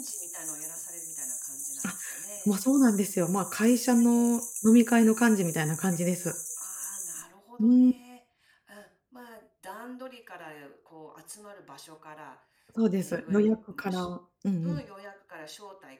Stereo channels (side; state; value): both; identical; correlation 1.00